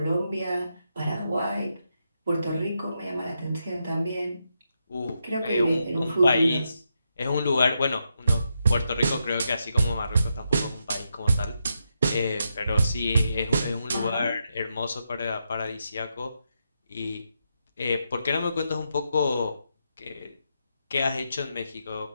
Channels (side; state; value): both; inverted; correlation -0.83